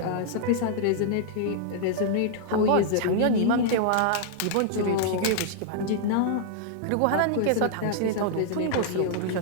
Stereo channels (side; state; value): both; different; correlation -0.01